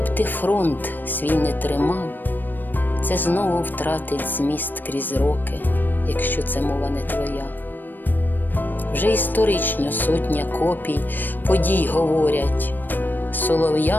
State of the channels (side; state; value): right; late; 0.091 ms